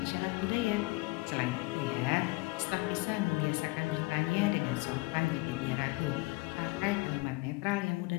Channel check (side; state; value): right; quieter; 24.3 dB